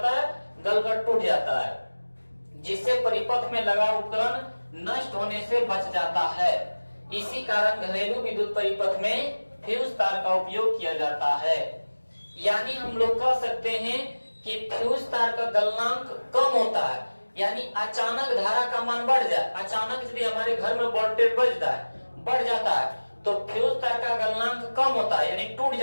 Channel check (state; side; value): inverted; both; correlation -1.00